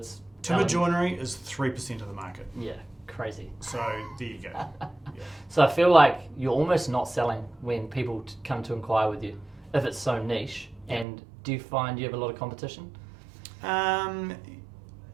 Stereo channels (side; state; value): left; drops out; at 11.1 s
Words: Timber joinery is 3% of the market. Yeah, crazy. So there you go. Yeah. So I feel like you're almost not selling when people come to inquire with you, if it's so niche. And do you find you have a lot of competition?